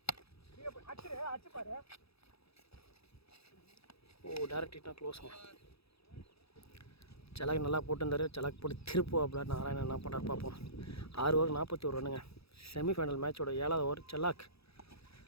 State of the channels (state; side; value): late; right; 0.77 ms